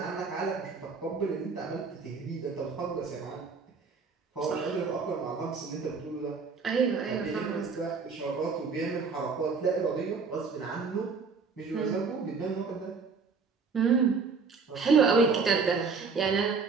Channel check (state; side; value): quieter; left; 5.0 dB